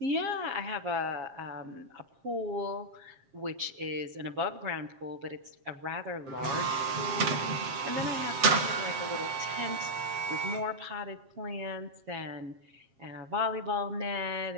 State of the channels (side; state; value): left; late; 7.4 ms